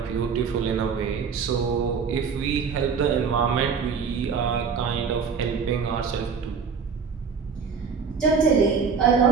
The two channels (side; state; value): left; quieter; 5.9 dB